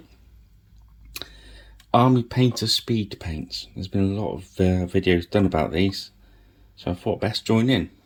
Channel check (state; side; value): identical; both; correlation 1.00